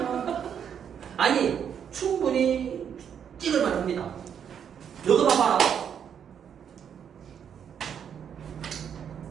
아니 충분히 찍을만 합니다. 이거 봐봐라.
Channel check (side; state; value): left; quieter; 8.2 dB